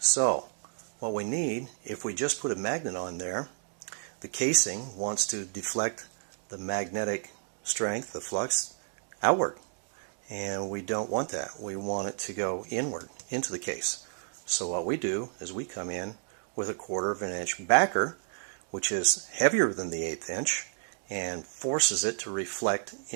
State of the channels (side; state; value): left; silent; digital silence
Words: what we need, if we just put a magnet on there, the casing wants to deflect the magnetic strength, the flux, outward. And we don't want that. We want it to go inward into the case. So what we do is we come in with a 1/4 of an inch backer, which is heavier than the 1/8 inch, and forces it to reflect